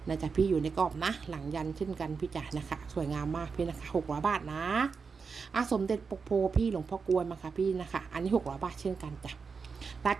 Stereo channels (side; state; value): left; quieter; 5.3 dB